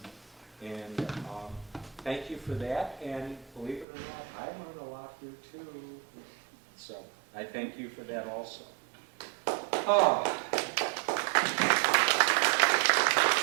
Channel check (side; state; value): left; drops out; at 3.9 s